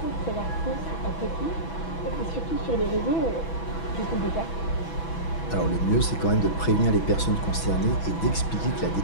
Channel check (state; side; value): late; right; 6.1 ms